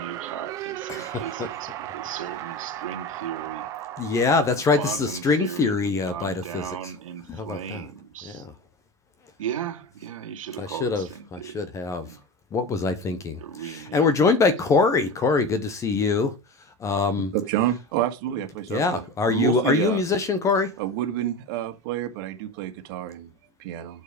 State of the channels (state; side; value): normal; both; correlation 0.28